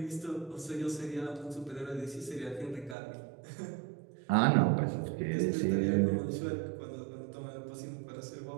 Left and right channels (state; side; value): drops out; left; at 3.0 s